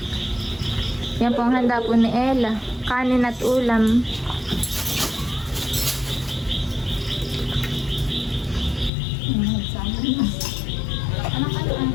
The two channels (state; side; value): drops out; right; at 8.9 s